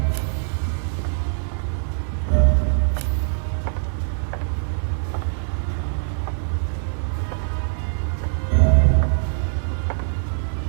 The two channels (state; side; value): silent; left; digital silence